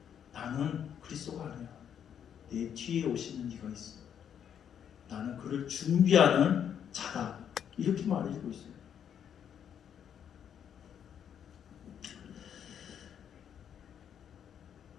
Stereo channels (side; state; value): right; quieter; 8.7 dB